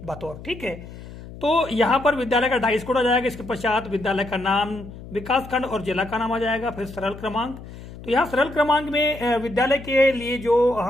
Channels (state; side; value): noise; left; hum, 15 dB below the sound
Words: बतौर। ठीक है, तो यहाँ पर विद्यालय का डाइस कोड आ जाएगा। इसके पश्चात विद्यालय का नाम, विकास खंड और जिला का नाम आ जाएगा, फिर सरल क्रमांक। तो यहाँ सरल क्रमांक में विद्यालय के लिए जो